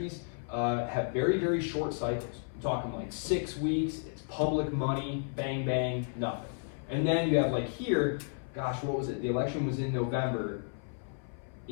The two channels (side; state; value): right; silent; 56 dB below the other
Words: have very, very short cycles. I'm talking like 6 weeks, it's public money, bang, bang, nothing. And then you have like here, gosh, what was it? The election was in November.